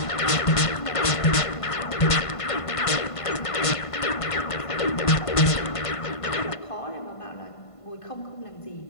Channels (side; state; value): right; late; 1.5 ms